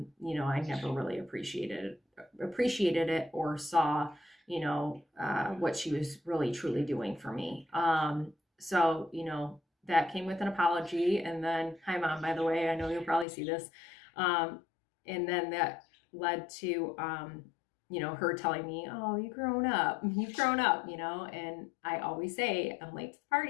never really appreciated it or saw what she was really truly doing for me. So that came with an apology, and then hi mom, by the way, I know you'll probably see this. And then that led to her telling me, oh, you've grown up, and I always say I'm late to the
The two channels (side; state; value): right; drops out; at 13.2 s